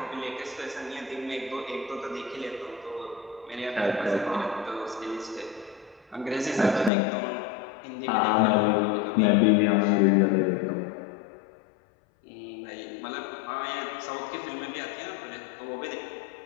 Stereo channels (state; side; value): drops out; right; at 6.9 s